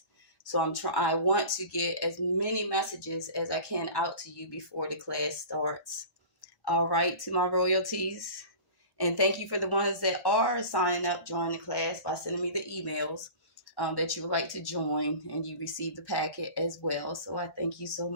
So I want to get as many messages as I can out to you before the class starts. All right, to my royalties. And thank you for the ones that are signing up, joining the class by sending me the emails that you would like to join, and you receive the packet as well. So I thank you so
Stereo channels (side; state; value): right; late; 1.1 ms